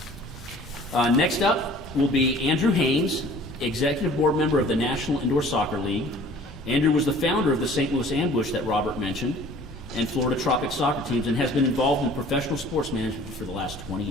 Next up will be Andrew Haynes, Executive Board Member of the National Indoor Soccer League. Andrew was the founder of the St. Louis Ambush that Robert mentioned, and Florida Tropic soccer teams, and has been involved in professional sports management for the last 20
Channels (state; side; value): normal; both; correlation 0.50